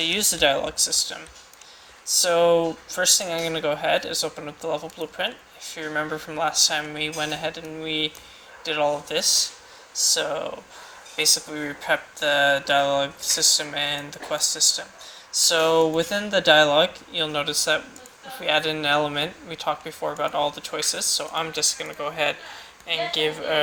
use the dialogue system. So first thing I'm going to go ahead is open up the level blueprint. If you remember from last time, we went ahead and we did all of this. So basically we prepped the dialogue system and the quest system. So within the dialogue, you'll notice that if we add in an element, we talked before about all the choices, so I'm just going to go ahead and give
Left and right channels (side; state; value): both; identical; correlation 1.00